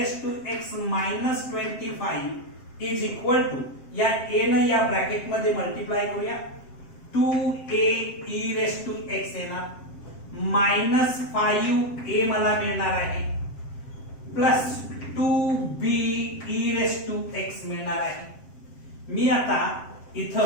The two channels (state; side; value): late; right; 7.6 ms